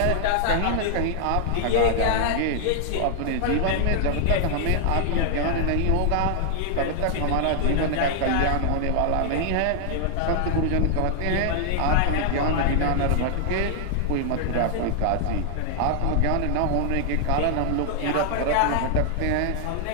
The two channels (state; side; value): different; both; correlation 0.00